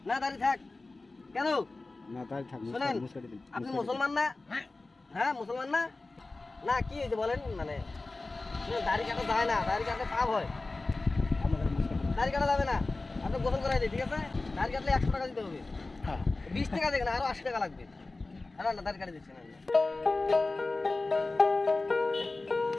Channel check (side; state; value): right; quieter; 3.3 dB